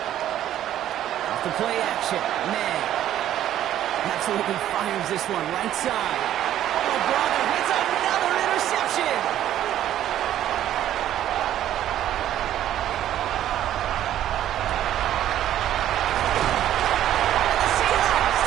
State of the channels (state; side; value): quieter; left; 11.9 dB